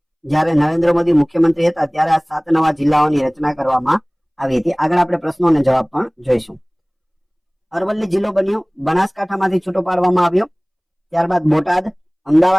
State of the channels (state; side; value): identical; both; correlation 1.00